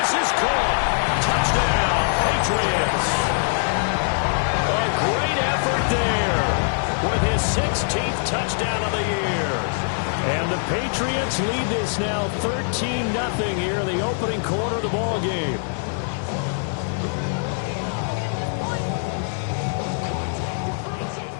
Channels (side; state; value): right; silent; digital silence